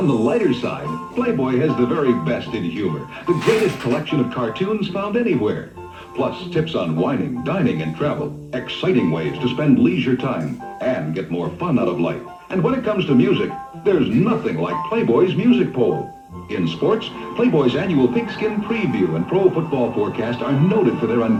the lighter side, Playboy has the very best in humor, the greatest collection of cartoons found anywhere. Plus tips on wining, dining, and travel, exciting ways to spend leisure time and get more fun out of life. And when it comes to music, there's nothing like Playboy's music poll. In sports, Playboy's annual pigskin preview and pro football forecast are noted for their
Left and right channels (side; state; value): both; identical; correlation 1.00